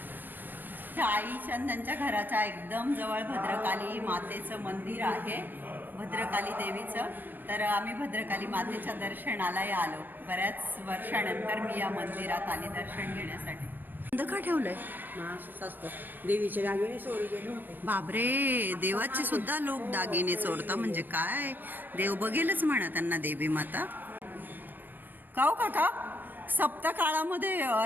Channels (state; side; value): late; left; 0.092 ms